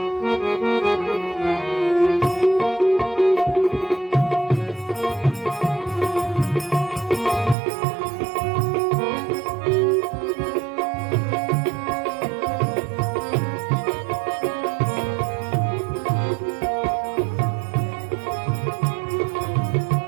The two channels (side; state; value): left; drops out; at 7.6 s